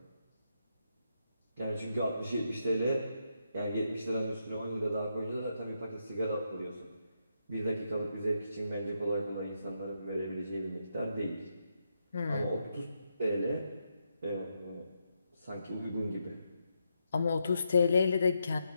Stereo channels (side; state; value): both; inverted; correlation -0.82